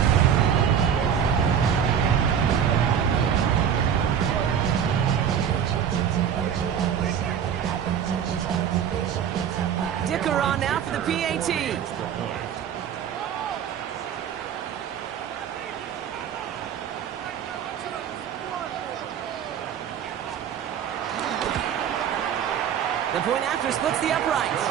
kicker on now for the PAT. The point after splits the uprights.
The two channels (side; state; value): left; quieter; 8.4 dB